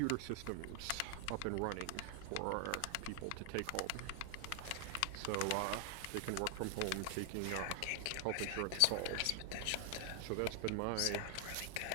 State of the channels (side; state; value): both; different; correlation 0.00